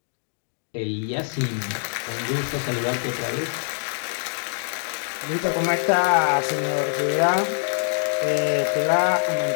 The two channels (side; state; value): right; silent; digital silence